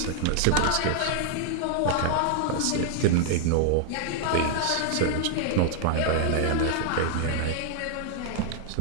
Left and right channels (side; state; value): both; different; correlation -0.01